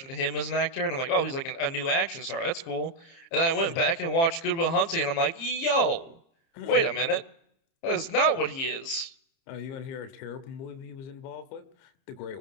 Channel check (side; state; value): right; late; 30 ms